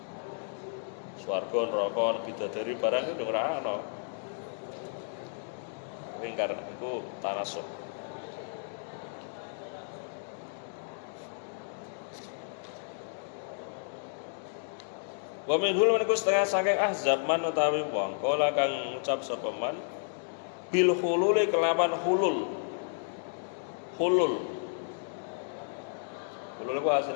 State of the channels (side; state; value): right; silent; digital silence